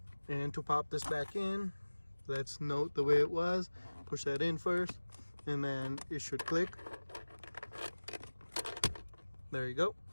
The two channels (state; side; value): inverted; both; correlation -1.00